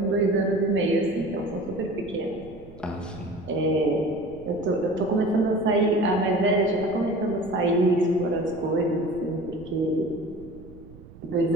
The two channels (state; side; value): noise; right; rumble, 19 dB below the sound